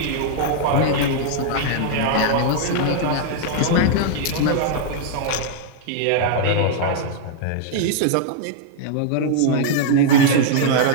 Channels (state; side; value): different; both; correlation -0.01